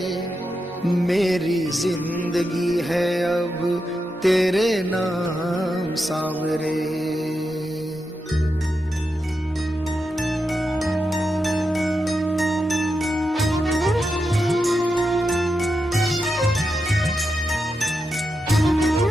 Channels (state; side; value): normal; both; correlation 0.87